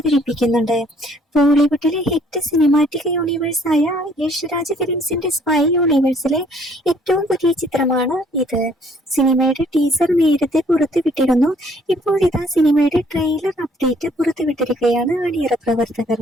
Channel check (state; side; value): normal; both; correlation 0.62